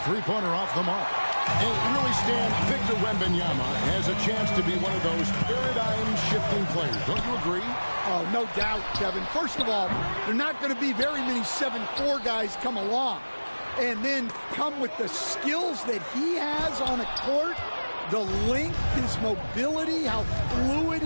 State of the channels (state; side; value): inverted; both; correlation -1.00